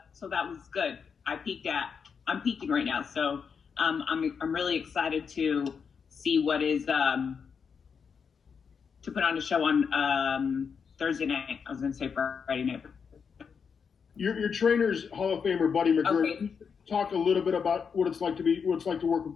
was good. I'm peaking right now, so I'm really excited to see what is to put on a show on Thursday night. I was going to say Friday night. Your trainer's Hall of Famer Buddy McGirt. Okay. Talk a little bit about what it's like to work with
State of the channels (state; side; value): quieter; right; 6.3 dB